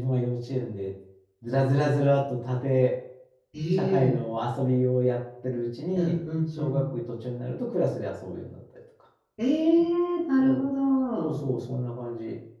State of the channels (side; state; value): both; identical; correlation 1.00